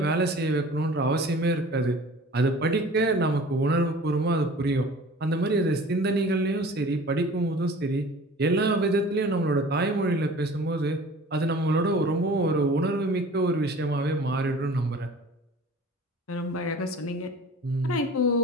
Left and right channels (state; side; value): normal; both; correlation 0.44